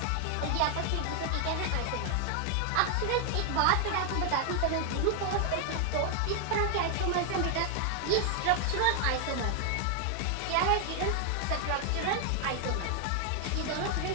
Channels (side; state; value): both; different; correlation 0.00